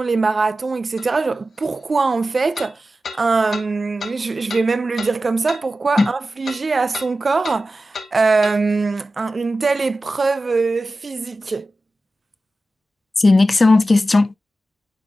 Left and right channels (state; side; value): normal; both; correlation 0.93